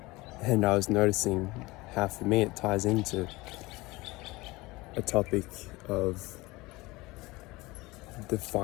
And I was noticing how for me it ties into a topic of the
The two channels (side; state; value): right; quieter; 21.8 dB